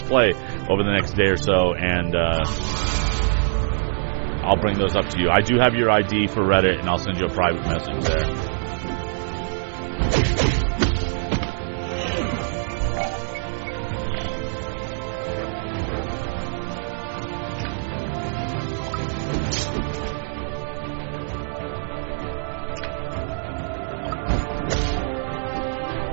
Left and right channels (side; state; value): left; silent; 63 dB below the other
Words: play over the next day or so, and I'll bring those up to you. I do have your ID for Reddit, and I'll send you a private message there.